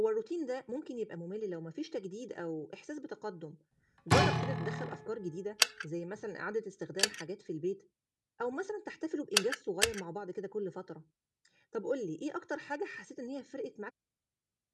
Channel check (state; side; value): identical; both; correlation 1.00